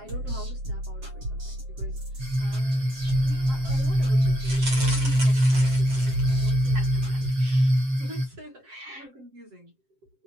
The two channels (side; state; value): left; late; 7.6 ms